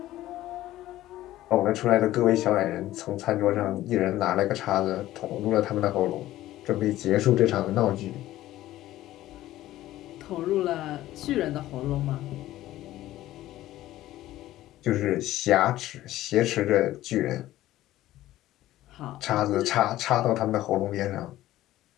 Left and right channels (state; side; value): quieter; right; 15.0 dB